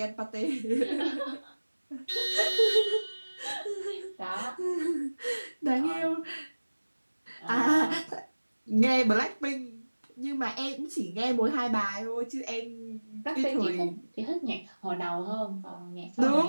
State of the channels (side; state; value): both; inverted; correlation -1.00